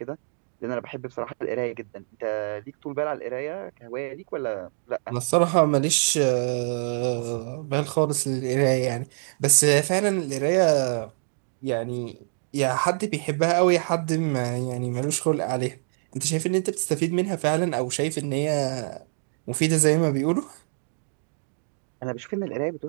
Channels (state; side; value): silent; left; digital silence